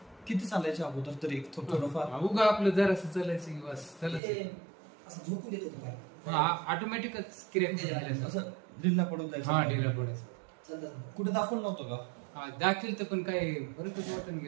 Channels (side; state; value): left; drops out; at 4.2 s